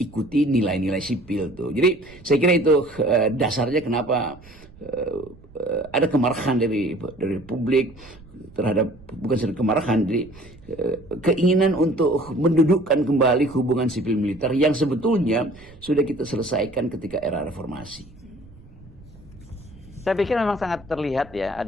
nilai-nilai sipil tuh. Jadi saya kira itu dasarnya kenapa ada kemarahan dari publik terhadap, bukan saja kemarahan, jadi keinginan untuk mendudukkan kembali hubungan sipil militer yang sebetulnya sudah kita selesaikan ketika era reformasi. Saya pikir memang sangat terlihat ya,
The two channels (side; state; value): right; noise; rumble, 22 dB below the sound